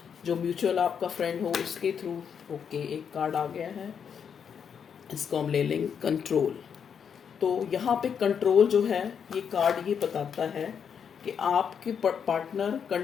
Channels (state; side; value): quieter; right; 7.3 dB